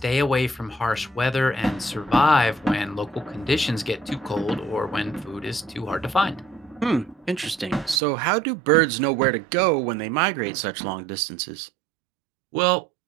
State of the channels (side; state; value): left; drops out; at 8.0 s